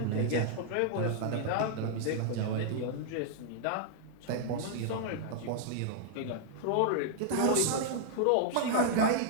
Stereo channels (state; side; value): different; both; correlation -0.01